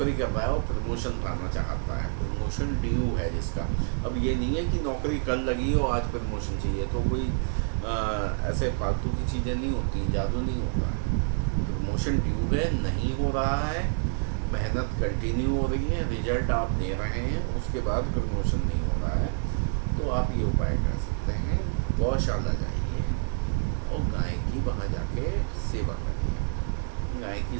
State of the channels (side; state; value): left; silent; digital silence